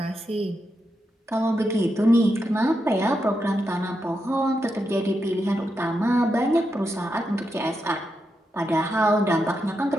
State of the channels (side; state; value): both; normal; correlation 0.85